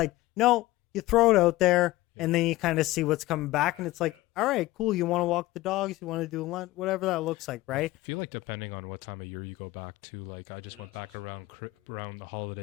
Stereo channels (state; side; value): quieter; right; 18.1 dB